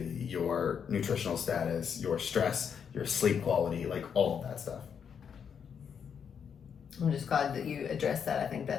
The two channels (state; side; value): quieter; right; 7.3 dB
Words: your nutritional status, your stress, your sleep quality, like all of that stuff. I'm just glad that you addressed that. I think